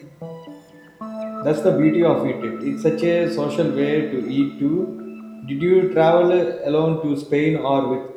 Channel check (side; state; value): both; identical; correlation 1.00